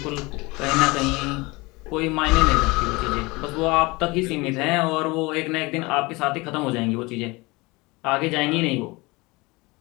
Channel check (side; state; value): right; quieter; 24.0 dB